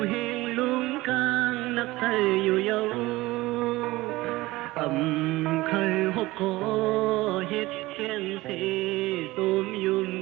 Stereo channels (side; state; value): left; quieter; 19.3 dB